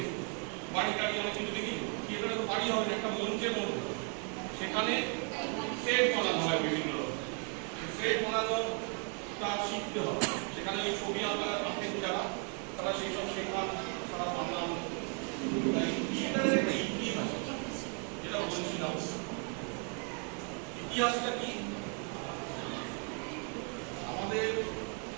বাড়ি টাড়ি অনেক কিছু দেখি, থিয়েটারে তো বাড়ি হবে একটা মঞ্চের মধ্যে, সেখানে সেট বানানো হয় বিভিন্ন রকম। সেট বানানোটা শিখতে হবে, সেখানে ওই ছবি আঁকা আঁকেন যারা, তারা সেই সব শেখান, তারা বানান। থিয়েটারের একটা ইতিহাস যেটা বলছিলাম, ইতিহাসটা কি? আমাদের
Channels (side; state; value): left; quieter; 39.5 dB